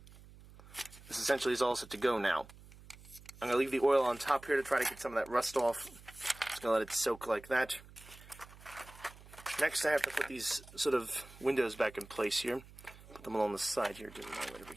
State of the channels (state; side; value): noise; right; hum, 20 dB below the sound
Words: This essentially is all set to go now. I'm going to leave the oil on top here to try to get some of that rust off. Just going to let it soak like that. Next, I have to put these sort of windows back in place here. Put them along the side here. Right over